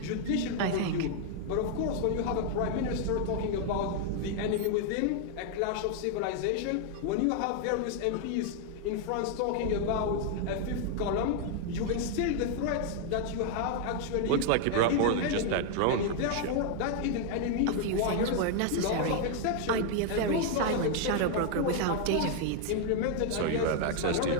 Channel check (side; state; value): both; different; correlation 0.00